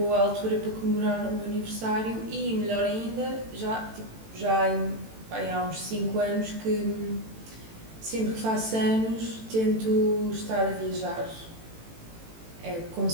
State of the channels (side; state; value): left; late; 18 ms